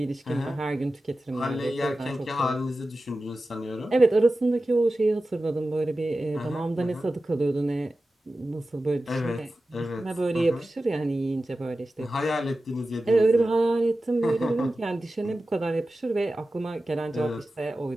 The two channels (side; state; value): both; normal; correlation 0.94